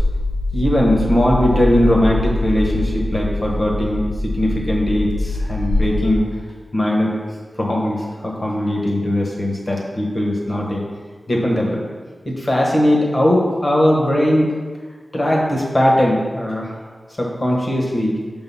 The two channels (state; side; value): normal; both; correlation 0.94